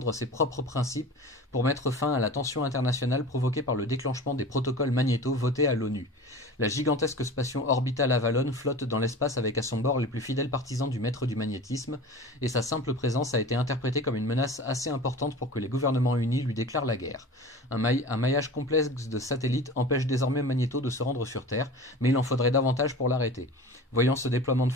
ses propres principes pour mettre fin à la tension internationale provoquée par le déclenchement des protocoles Magnéto votés à l'ONU. La gigantesque station orbitale Avalon flotte dans l'espace avec à son bord les plus fidèles partisans du maître du magnétisme, et sa simple présence a été interprétée comme une menace assez importante pour que les gouvernements unis lui déclarent la guerre. Un maillage complexe de satellites empêche désormais Magnéto de se rendre sur Terre, mais il en faudrait davantage pour l'arrêter. Voyant ce déploiement de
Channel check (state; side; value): normal; both; correlation 0.36